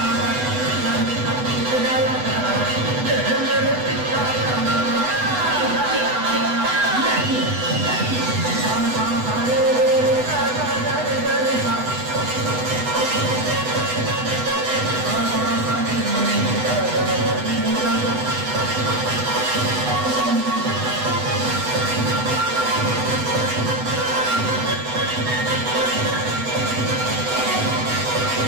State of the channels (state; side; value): late; left; 8.0 ms